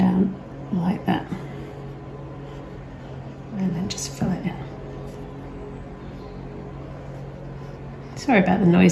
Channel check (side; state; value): both; identical; correlation 1.00